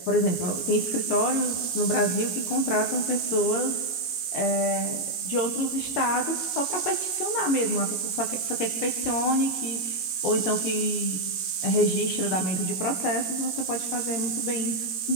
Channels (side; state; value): right; late; 22 ms